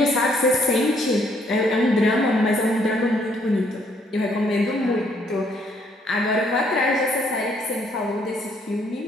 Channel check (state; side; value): normal; both; correlation 0.68